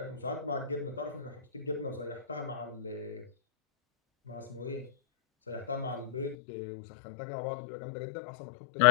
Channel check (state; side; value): drops out; right; at 6.4 s